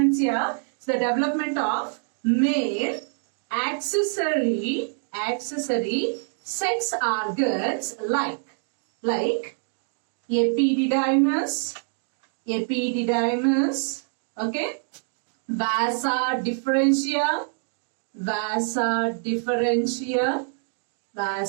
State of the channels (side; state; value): left; silent; 61 dB below the other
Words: here? So the development of male accessory sex organs like epididymis, okay, vasa differentia,